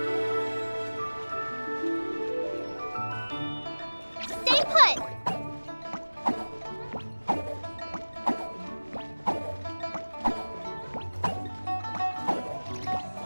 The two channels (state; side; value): inverted; both; correlation -1.00